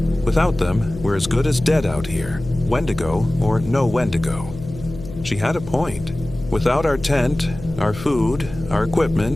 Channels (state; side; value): noise; left; hum, 13 dB below the sound